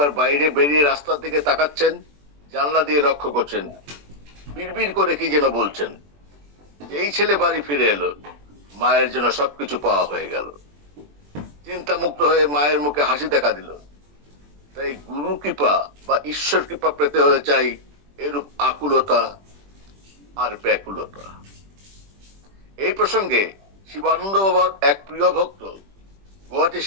বাইরে বেরিয়ে রাস্তার দিকে তাকাচ্ছেন, জানলা দিয়ে লক্ষ্য করছেন, বিড়বিড় করে কি যেন বলছেন। এই ছেলে বাড়ি ফিরে এলো, মায়ের জন্য সবকিছু পাওয়া হয়ে গেল। চিন্তা মুক্ত হয়ে মায়ের মুখে হাসি দেখা দিল। তাই গুরু কৃপা বা ঈশ্বর কৃপা পেতে হলে চাই এরূপ আকুলতা আর ব্যাকুলতা। এই প্রসঙ্গে শিবানন্দ বাবার এক প্রিয় ভক্ত গুয়াহাটির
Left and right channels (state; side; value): late; left; 21 ms